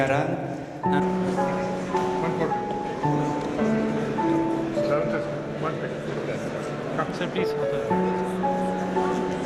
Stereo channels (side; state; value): both; identical; correlation 1.00